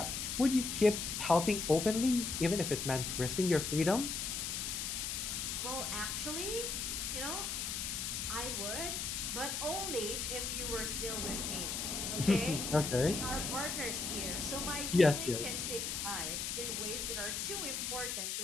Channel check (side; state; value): left; noise; hiss, 2 dB below the sound